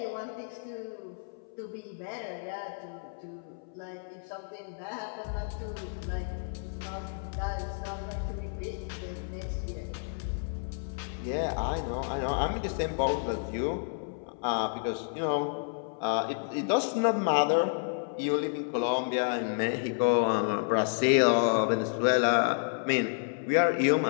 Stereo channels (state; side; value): silent; right; 56 dB below the other